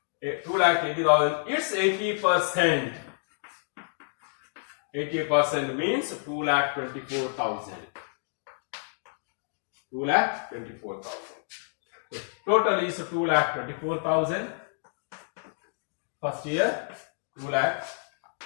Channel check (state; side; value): silent; right; digital silence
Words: 2,80,000. It's 80%. 80% means 2,24,000. 2,24,000. Total is 2,24,000. First year